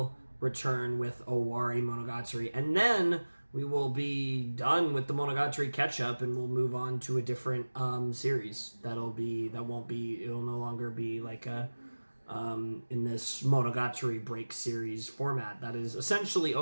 return with Owari Monogatari, and then we will be done with the Monogatari catch-up, and we'll move on to a different series. It'll no longer be like in this Monogatari break series format. That is essentially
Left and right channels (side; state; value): both; inverted; correlation -1.00